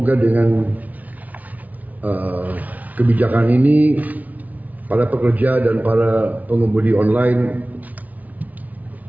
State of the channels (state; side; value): late; left; 0.074 ms